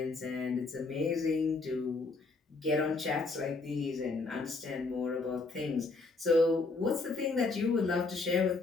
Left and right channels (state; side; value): quieter; right; 3.8 dB